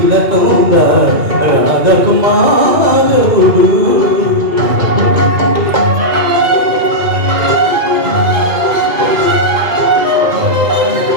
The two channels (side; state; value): left; late; 2.5 ms